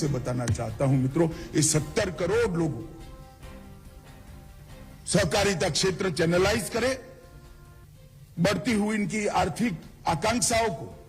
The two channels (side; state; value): both; identical; correlation 1.00